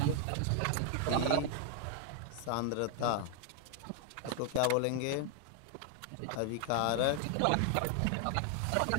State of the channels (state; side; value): different; both; correlation 0.00